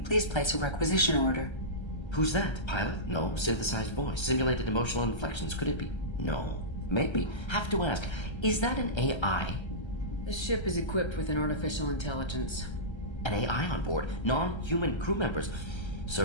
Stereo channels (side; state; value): right; late; 1.3 ms